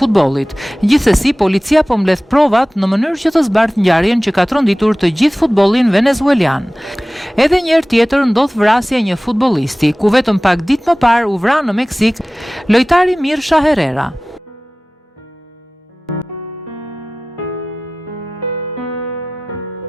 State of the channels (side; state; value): both; normal; correlation 0.97